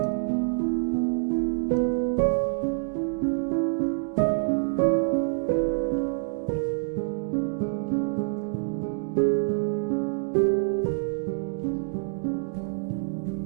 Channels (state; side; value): silent; left; digital silence